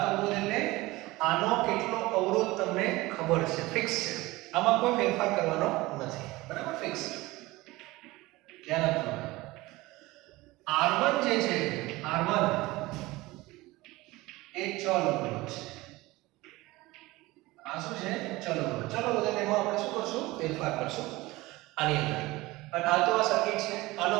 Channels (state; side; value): quieter; left; 20.2 dB